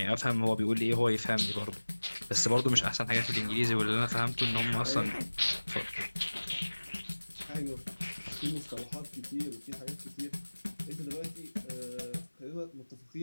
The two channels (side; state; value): both; inverted; correlation -1.00